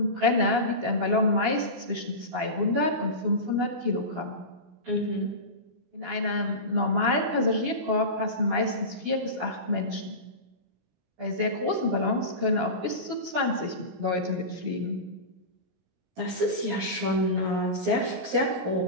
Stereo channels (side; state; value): left; late; 17 ms